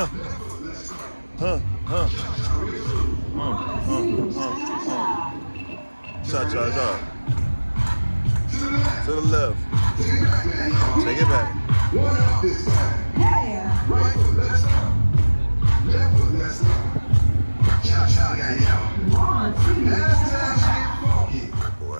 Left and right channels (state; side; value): inverted; both; correlation -1.00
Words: Cha-cha-cha. To the left. Take it back. Wow.